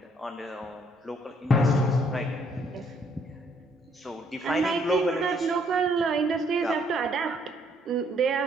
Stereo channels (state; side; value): normal; both; correlation 0.67